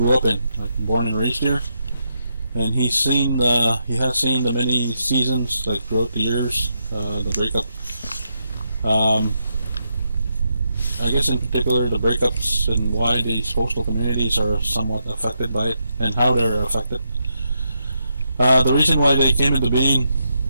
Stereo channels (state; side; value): inverted; both; correlation -0.82